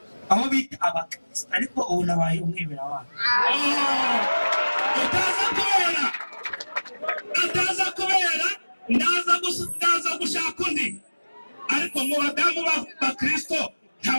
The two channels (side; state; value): both; inverted; correlation -1.00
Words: aho bita abakristo ariko ubu nabaye umwemeramana. Utaza kubera ndaza gushaka undi. Ariko mu badamu b'abakristo